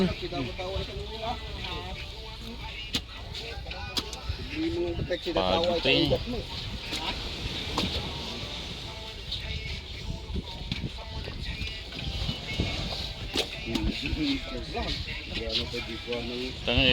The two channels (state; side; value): identical; both; correlation 1.00